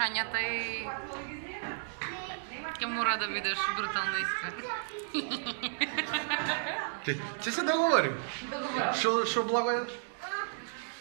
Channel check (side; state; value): left; silent; digital silence